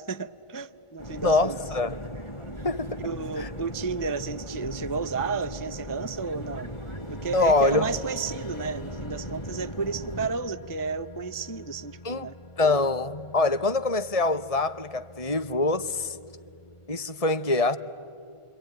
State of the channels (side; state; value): right; late; 1.7 ms